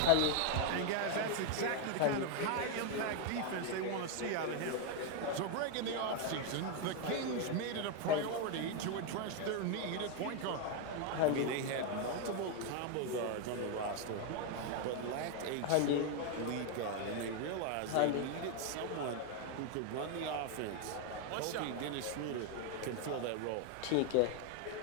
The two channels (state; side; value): different; both; correlation 0.01